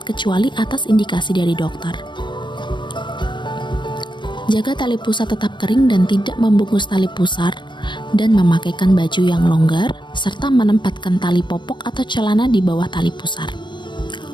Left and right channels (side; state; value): right; late; 0.22 ms